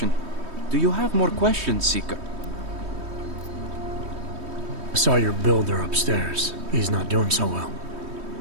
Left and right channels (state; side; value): late; left; 3.2 ms